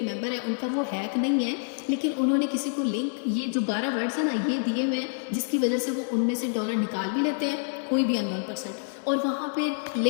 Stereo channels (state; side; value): silent; right; digital silence